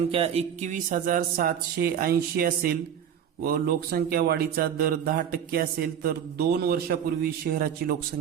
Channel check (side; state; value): left; quieter; 8.8 dB